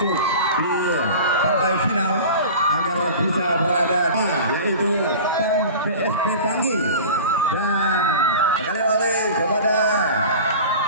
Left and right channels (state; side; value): inverted; both; correlation -0.37